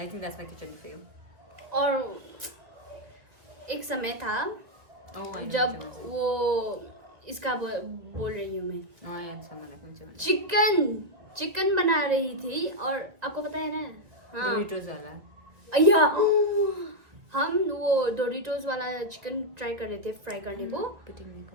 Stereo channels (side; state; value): left; late; 2.0 ms